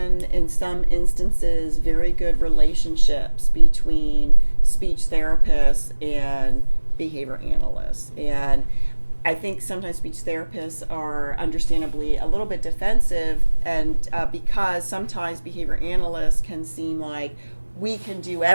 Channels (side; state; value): both; inverted; correlation -1.00